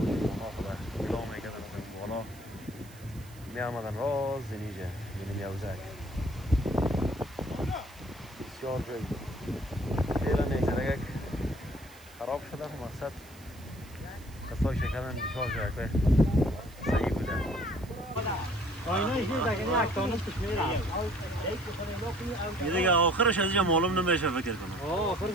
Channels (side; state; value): right; noise; hiss, 22 dB below the sound